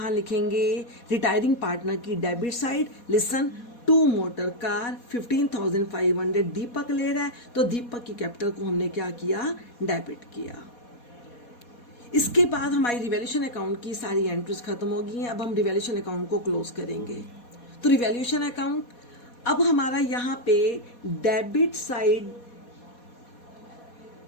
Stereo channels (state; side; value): late; right; 4.2 ms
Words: लिखेंगे, रिटायरिंग पार्टनर की debit side. Listen, 2 motor car 15,500 दीपक ले रहा है, तो दीपक की कैपिटल को हमने क्या किया, डेबिट किया। इसके बाद हमारी रिवैल्यूएशन अकाउंट की सारी एंट्रीज खत्म हो गई हैं। अब हम रिवैल्यूएशन अकाउंट को क्लोज करेंगे। तो रिवैल्यूएशन अकाउंट, अब हमारा यहाँ पे debit side